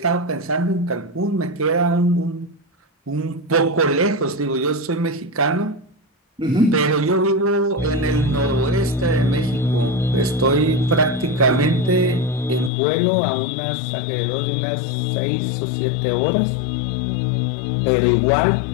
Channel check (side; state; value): right; drops out; at 12.7 s